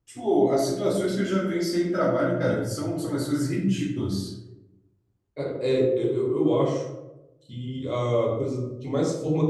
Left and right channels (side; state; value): both; identical; correlation 1.00